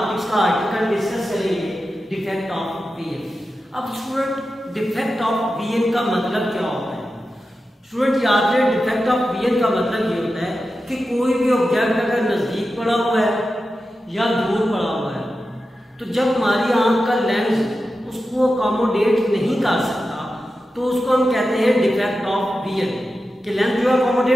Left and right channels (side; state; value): both; normal; correlation 0.91